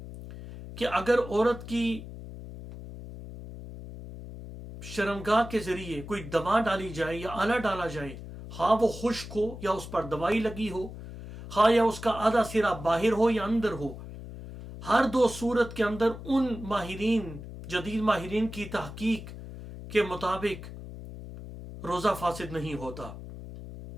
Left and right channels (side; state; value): left; noise; hum, 12 dB below the sound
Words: کہ اگر عورت کی شرمگاہ کے ذریعے کوئی دوا ڈالی جائے یا آلہ ڈالا جائے، ہاں وہ خشک ہو یا اس پر دوائی لگی ہو، ہاں یا اس کا آدھا سرا باہر ہو یا اندر ہو، ہر دو صورت کے اندر ان جدید ماہرین کی تحقیق کے مطابق روزہ فاسد نہیں ہوتا۔